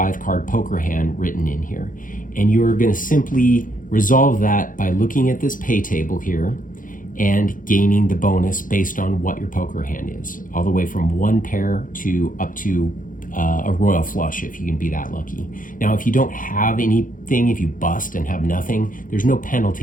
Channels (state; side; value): late; right; 0.39 ms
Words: poker hand written in here. And you're going to simply resolve that by looking at this pay table here and gaining the bonus based on what your poker hand is, all the way from 1 pair to up to a royal flush if you can be that lucky. Now, if you don't have anything, if you bust and have nothing, there's no